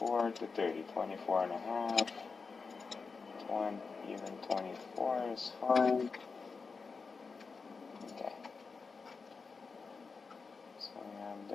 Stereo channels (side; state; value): right; quieter; 4.8 dB